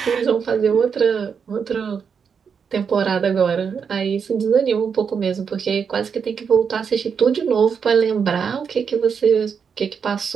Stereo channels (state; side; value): quieter; left; 6.5 dB